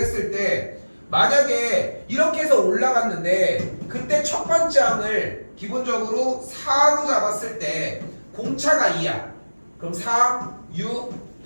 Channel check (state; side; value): inverted; both; correlation -1.00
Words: 때 만약에 이렇게 해서 올라갔는데 그때 첫 번째 항을 기본적으로 4로 잡았을 때 공차가 2야. 그럼 4, 6,